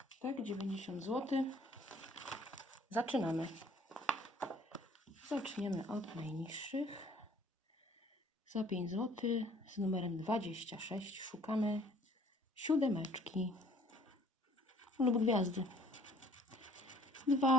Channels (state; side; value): normal; both; correlation 0.56